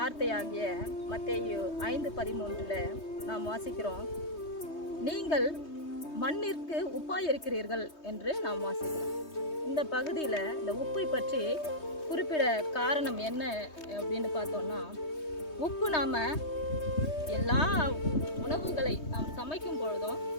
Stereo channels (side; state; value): right; late; 3.2 ms